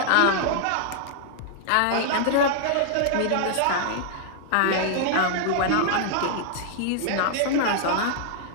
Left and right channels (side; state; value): both; different; correlation -0.01